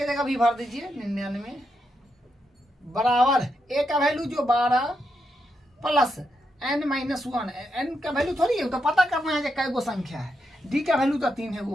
जगह भी भर दीजिए 99 बराबर a का वैल्यू जो 12 प्लस n माइनस 1। n का वैल्यू थोड़ी है, तो पता करना है कि कै गो संख्या है। d का वैल्यू तो 3 है,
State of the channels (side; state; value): both; normal; correlation 0.83